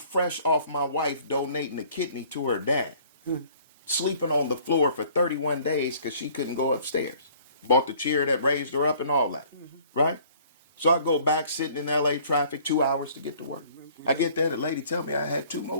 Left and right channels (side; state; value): both; inverted; correlation -0.55